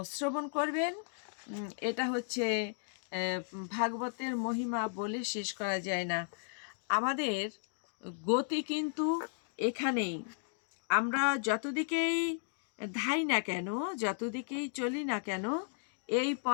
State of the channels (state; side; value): silent; right; digital silence